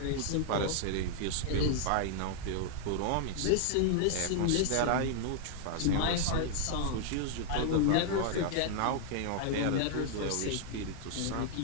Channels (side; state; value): both; different; correlation 0.00